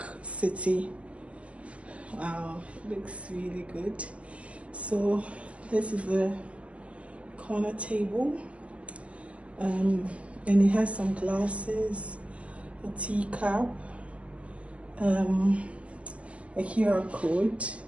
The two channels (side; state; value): left; late; 0.062 ms